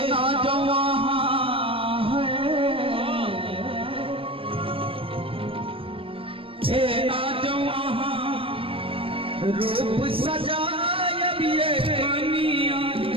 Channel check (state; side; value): late; left; 0.26 ms